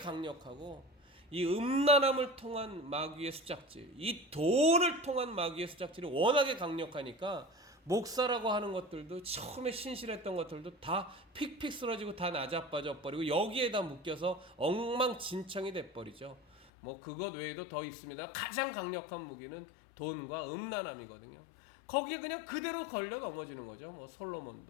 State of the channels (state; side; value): drops out; right; at 16.7 s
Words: 이 음란함을 통한 마귀의 수작질, 이 돈을 통한 마귀의 수작질이 워낙에 강력하니까 목사라고 하는 것들도 처음에 신실했던 것들도 다 픽픽 쓰러지고 다 나자빠져 버리고 여기에다 묶여서 엉망진창이 돼버리죠. 뭐 그것 외에도 더 있습니다. 가장 강력한 무기는 돈과 음란함이거든요. 거기에 그냥 그대로 걸려 넘어지는 거죠. 뭐